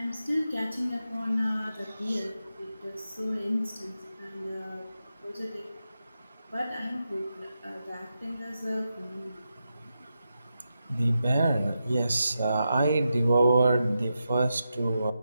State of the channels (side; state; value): both; inverted; correlation -0.88